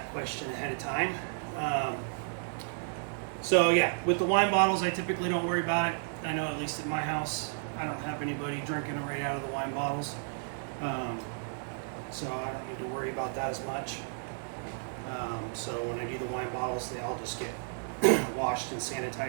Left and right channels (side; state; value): left; silent; digital silence